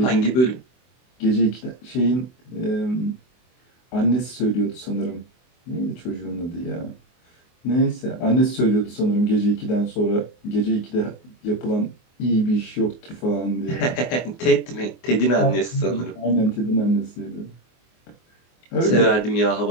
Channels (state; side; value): late; right; 24 ms